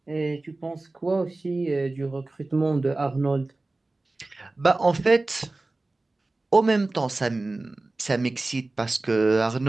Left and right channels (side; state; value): left; quieter; 3.1 dB